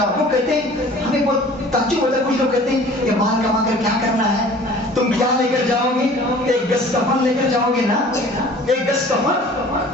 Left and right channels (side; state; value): both; normal; correlation 0.47